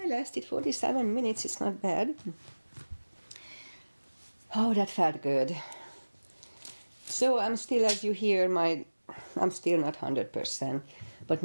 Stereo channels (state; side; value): inverted; both; correlation -1.00